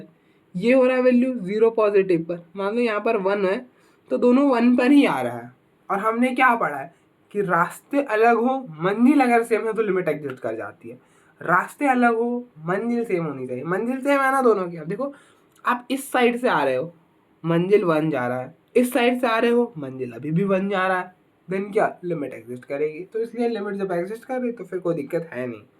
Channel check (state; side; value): identical; both; correlation 1.00